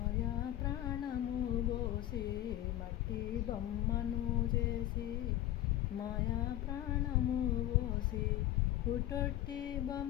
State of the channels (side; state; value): right; quieter; 13.6 dB